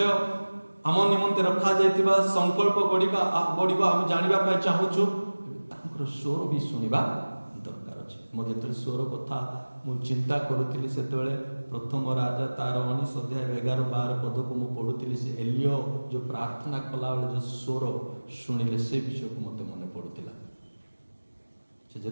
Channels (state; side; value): inverted; both; correlation -1.00